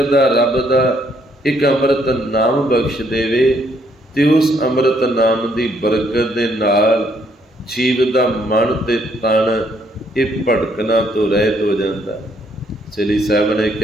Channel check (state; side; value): normal; both; correlation 0.70